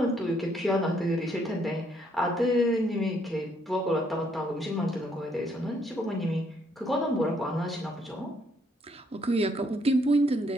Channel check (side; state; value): both; normal; correlation 0.70